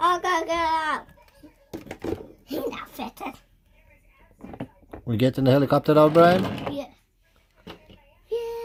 go get out. He's not fitted. We getting the helicopter out, Brian? Yeah.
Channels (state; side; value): identical; both; correlation 1.00